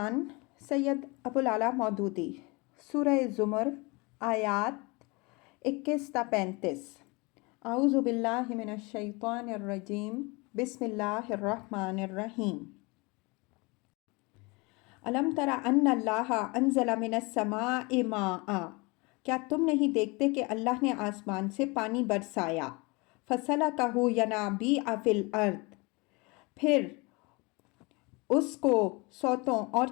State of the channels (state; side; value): quieter; right; 26.9 dB